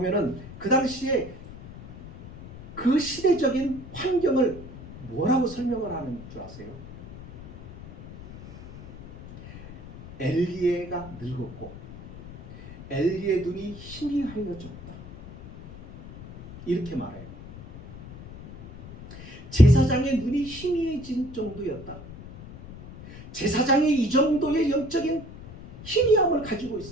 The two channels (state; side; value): noise; left; rumble, 16 dB below the sound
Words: 그 당시에 그 시대적인 환경을 뭐라고 설명을 하는 줄 아세요? 엘리에가 늙었고 엘리의 눈이 희미하여졌다. 이렇게 말해요. 제사장의 눈이 희미해진 정도였다. 제사장이 이 정도의 영적인 희미함을 가지고